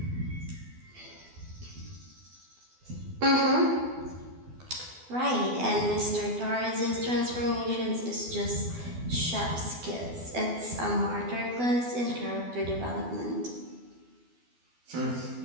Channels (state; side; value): late; left; 12 ms